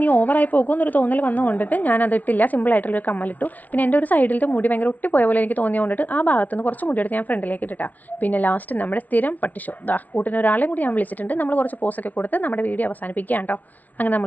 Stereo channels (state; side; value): late; right; 0.075 ms